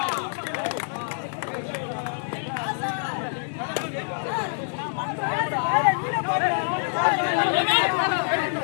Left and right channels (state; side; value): silent; right; digital silence